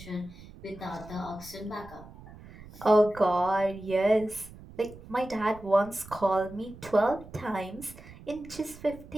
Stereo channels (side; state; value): right; noise; rumble, 18 dB below the sound